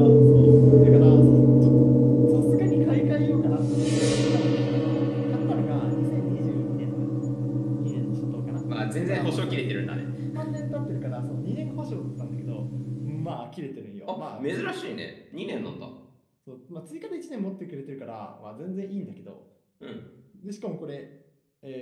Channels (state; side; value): identical; both; correlation 1.00